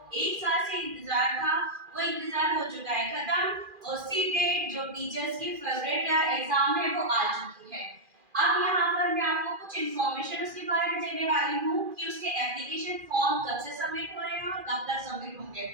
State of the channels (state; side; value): late; left; 2.4 ms